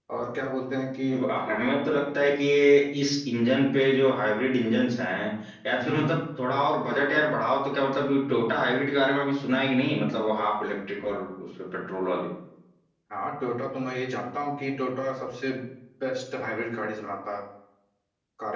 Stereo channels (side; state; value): both; identical; correlation 1.00